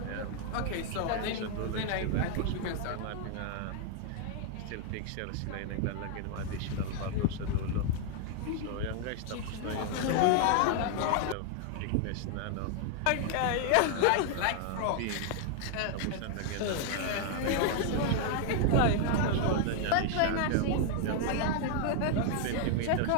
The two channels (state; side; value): different; both; correlation 0.00